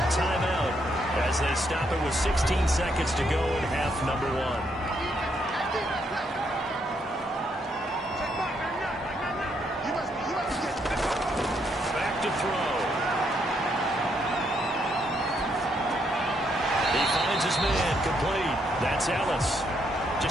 timeout as they stop it with 16 seconds to go in half number 1. Complete. That's Ellis.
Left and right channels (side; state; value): both; normal; correlation 0.75